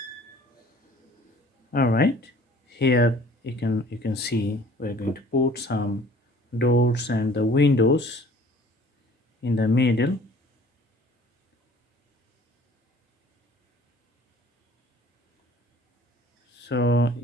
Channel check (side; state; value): both; normal; correlation 0.51